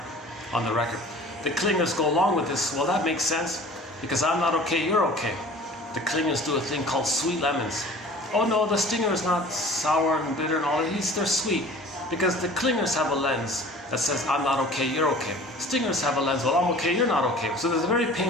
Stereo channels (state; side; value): normal; both; correlation 0.45